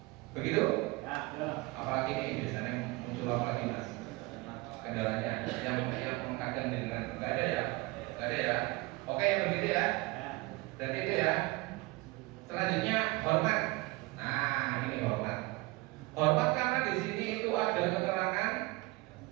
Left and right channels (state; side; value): quieter; left; 22.7 dB